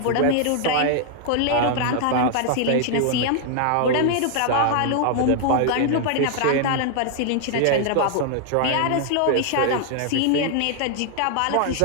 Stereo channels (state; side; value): different; both; correlation 0.00